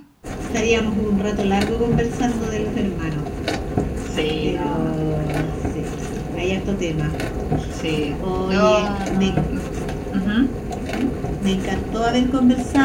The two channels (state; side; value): identical; both; correlation 1.00